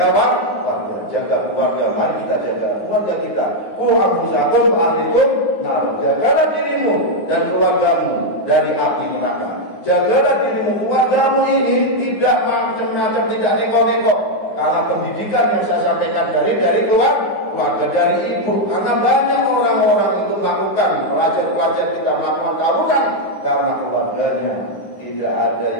warga, jaga keluarga. Mari kita jaga keluarga kita. Anfusakum ahlikum nar. Jagalah dirimu dan keluargamu dari api neraka. Jagalah dirimu, keluargamu ini tidak macam-macam, tidak neko-neko. Karena pendidikan yang saya sampaikan dari keluarga, dari ibu. Karena banyak orang-orang itu melakukan, pelajar-pelajar kita melakukan tawuran karena keluarganya tidak ada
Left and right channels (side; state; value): right; late; 9.6 ms